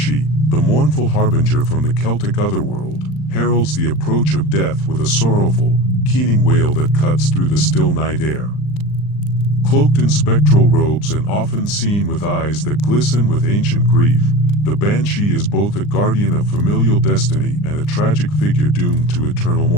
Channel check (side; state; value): right; late; 39 ms